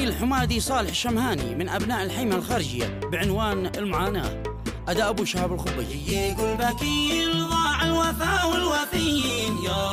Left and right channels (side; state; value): both; identical; correlation 1.00